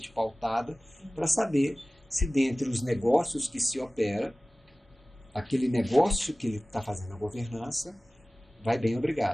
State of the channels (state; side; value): normal; both; correlation 0.98